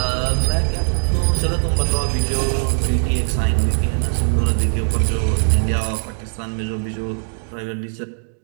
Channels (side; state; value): left; silent; digital silence